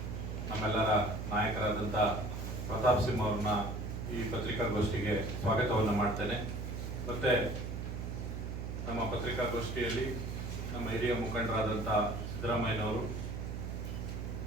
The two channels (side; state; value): right; noise; hum, 5 dB below the sound